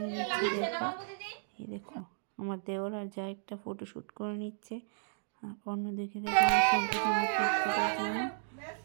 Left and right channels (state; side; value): silent; left; digital silence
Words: নিচ্ছি। দেখো এই দেখো আমার দেওর আর যা একটা ফটোশ্যুট করে নিচ্ছে। আর অন্যদিকে দেখো আমার সন্তান আমার কেক কাটার জন্য